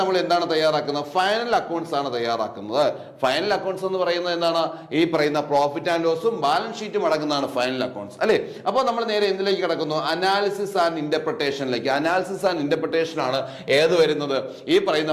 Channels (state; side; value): identical; both; correlation 1.00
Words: എന്താണ് തയ്യാറാക്കുന്നത്, ഫൈനൽ അക്കൗണ്ട്സ് ആണ് തയ്യാറാക്കുന്നത്. ഫൈനൽ അക്കൗണ്ട്സ് എന്ന് പറയുന്നത് എന്താണ്, ഈ പറയുന്ന പ്രോഫിറ്റ് ആൻഡ് ലോസും ബാലൻസ് ഷീറ്റും അടങ്ങുന്നതാണ് ഫൈനൽ അക്കൗണ്ട്സ് അല്ലെ. അപ്പോൾ നമ്മൾ നേരെ എന്തിലേക്ക് കിടക്കുന്നു, അനാലിസിസ് ആൻഡ് ഇന്റർപ്രിട്ടേഷനിലേക്ക്. അനാലിസിസ് ആൻഡ് ഇന്റർപ്രിട്ടേഷൻ ആണ് ഏത് വരുന്നത്, ഈ പറയുന്ന